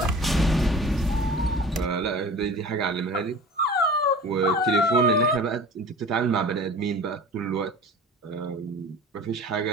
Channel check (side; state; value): both; normal; correlation 0.40